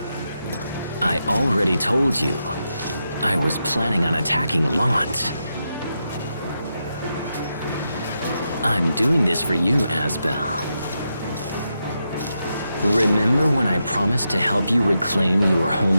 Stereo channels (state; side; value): inverted; both; correlation -0.86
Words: I already told you. I was planning on attacking Lant. I'm doing this for you, Asbel. Remember when I promised to help you reclaim your